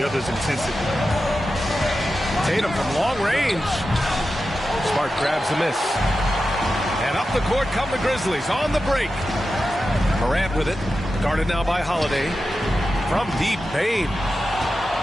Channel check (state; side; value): normal; both; correlation 0.91